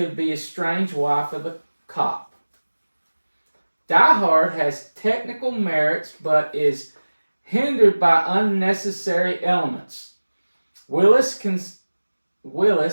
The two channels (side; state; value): both; inverted; correlation -1.00